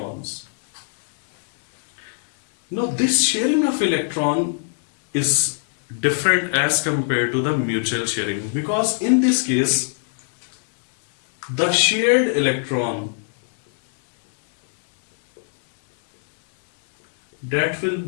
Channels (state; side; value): silent; right; 65 dB below the other